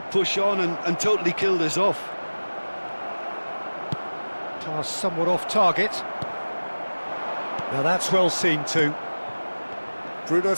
push on and totally kill this off? Pass somewhat off target. Now that's well seen too. Bruno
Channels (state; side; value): inverted; both; correlation -1.00